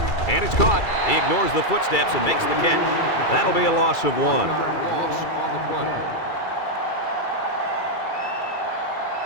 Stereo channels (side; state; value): right; late; 2.3 ms